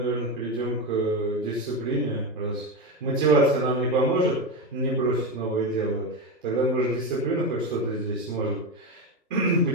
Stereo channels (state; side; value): normal; both; correlation 0.15